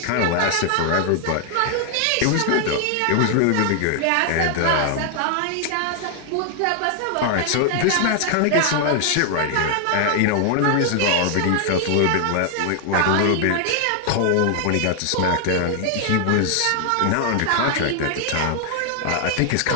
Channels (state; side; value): different; both; correlation 0.00